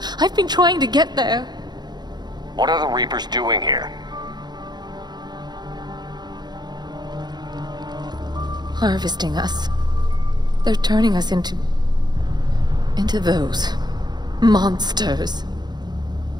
I've been trying to get there. What are the Reapers doing here? Harvesting us. They're turning us into those monsters.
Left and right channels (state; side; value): late; left; 0.20 ms